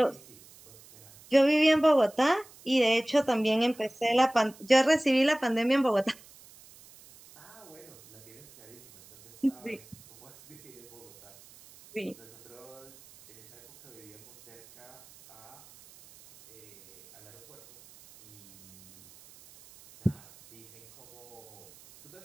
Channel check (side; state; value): right; noise; hiss, 23 dB below the sound